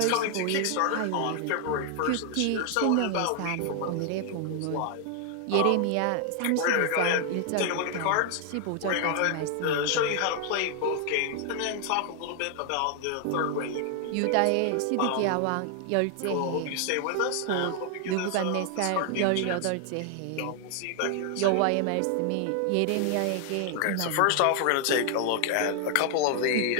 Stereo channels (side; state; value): both; different; correlation 0.00